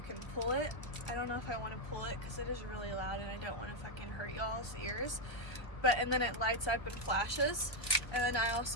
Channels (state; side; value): late; right; 1.4 ms